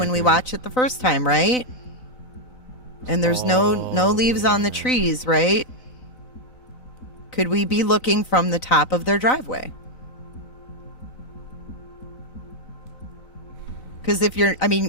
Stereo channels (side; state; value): right; late; 4.0 ms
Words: right we there. watch it the first time, right? And there's no leaves on the trees, right? Could we be looking from the top of their driveway? Because if you're, I